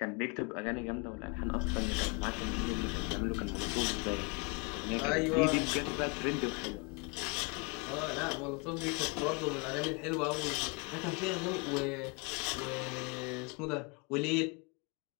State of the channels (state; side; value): quieter; right; 31.3 dB